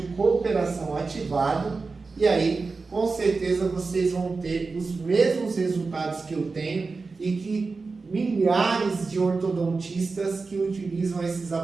cooperação ativado, e aí, com certeza, vocês vão ter os mesmos resultados que eu tenho e que milhares de ortodontistas que utilizam esses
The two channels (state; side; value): quieter; left; 4.2 dB